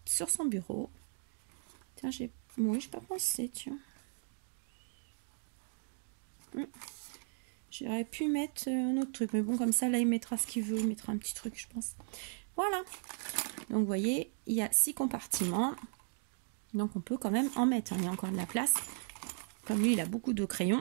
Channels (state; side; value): silent; left; 53 dB below the other